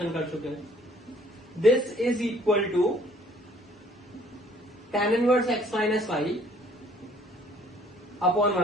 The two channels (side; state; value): both; normal; correlation 0.59